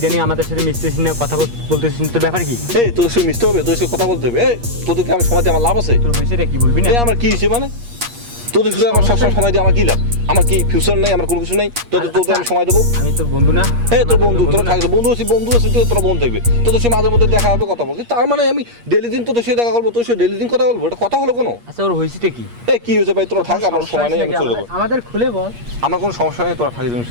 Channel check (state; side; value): late; left; 8.5 ms